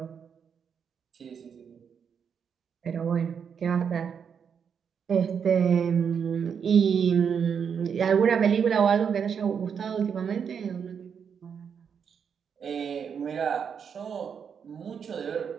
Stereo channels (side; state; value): left; quieter; 7.0 dB